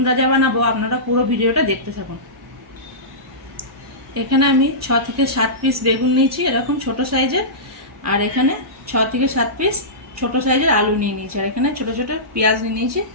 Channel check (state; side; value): normal; both; correlation -0.19